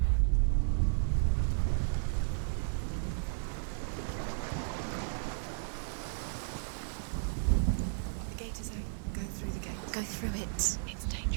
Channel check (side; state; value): left; silent; digital silence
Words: Go through it. It's